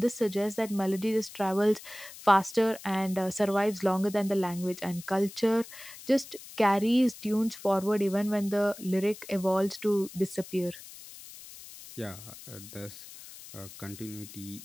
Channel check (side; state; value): left; noise; hiss, 16 dB below the sound